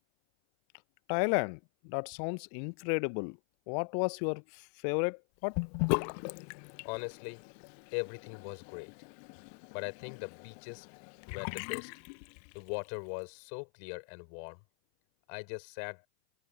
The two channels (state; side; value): silent; right; 52 dB below the other